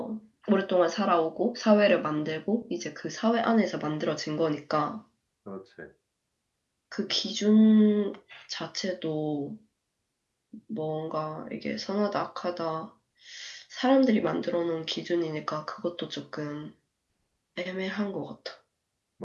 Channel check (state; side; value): identical; both; correlation 1.00